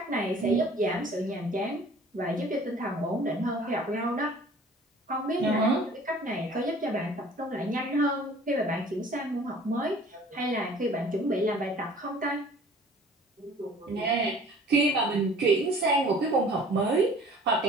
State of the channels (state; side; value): normal; both; correlation 0.49